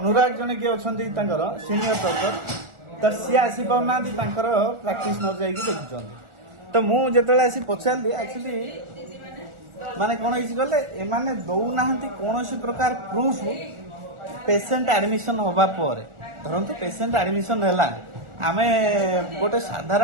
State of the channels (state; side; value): late; left; 1.4 ms